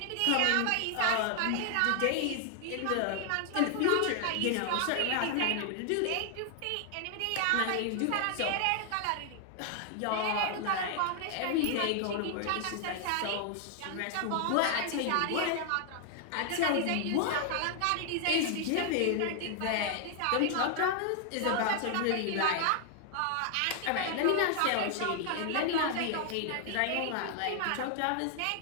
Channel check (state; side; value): different; both; correlation 0.00